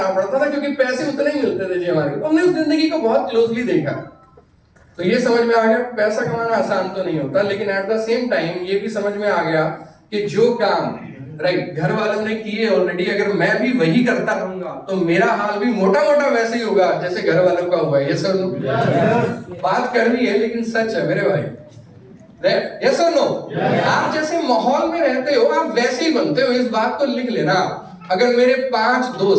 पड़ता था, क्योंकि पैसे उतने ही मिलते थे जी हमारे। तो हमने उस जिंदगी को बहुत क्लोजली देखा, तो ये समझ में आ गया पैसा कमाना आसान तो नहीं होता, लेकिन एट द सेम टाइम ये भी समझ में आ गया कि जो काम, राइट, घर वालों ने किए ऑलरेडी, अगर मैं भी वही करता रहूंगा तो मेरा हाल भी मोटा मोटा वैसे ही होगा जैसे घर वालों का हुआ है। ये सर बात कड़वी है लेकिन सच है मेरे भाई, यस और नो? आप जैसे माहौल में रहते हो आप वैसे ही बनते हो, इस बात को लिख लेना। अगर मेरे 5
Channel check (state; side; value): identical; both; correlation 1.00